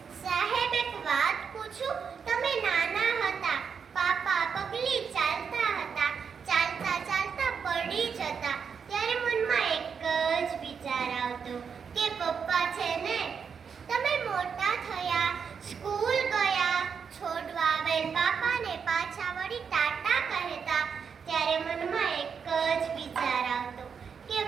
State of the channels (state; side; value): quieter; left; 6.5 dB